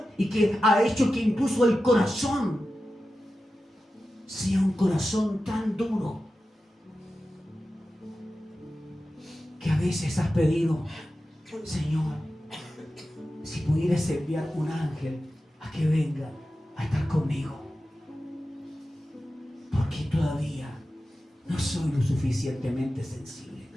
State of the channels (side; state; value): both; normal; correlation 0.93